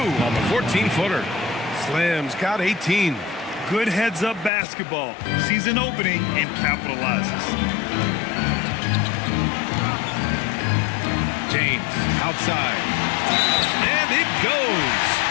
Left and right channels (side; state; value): right; drops out; at 4.5 s